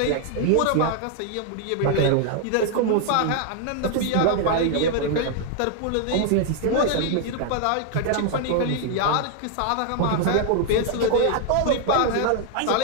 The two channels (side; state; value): both; different; correlation 0.00